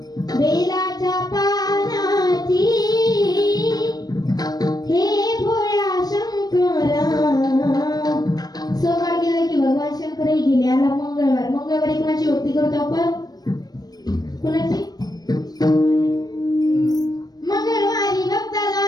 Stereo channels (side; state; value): right; late; 0.19 ms